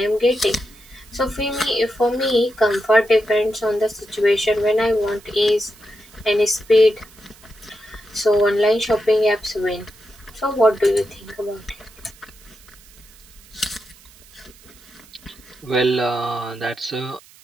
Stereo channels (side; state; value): right; noise; hiss, 25 dB below the sound